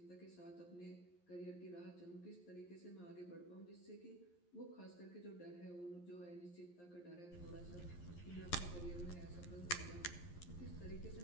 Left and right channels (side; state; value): right; late; 11 ms